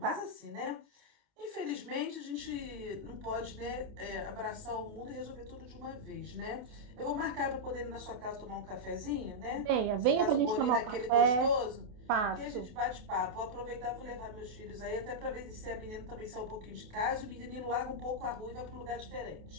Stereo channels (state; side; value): late; left; 28 ms